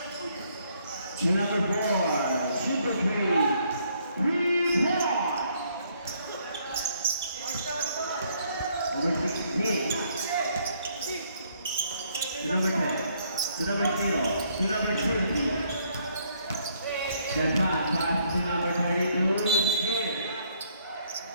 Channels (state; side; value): inverted; both; correlation -0.68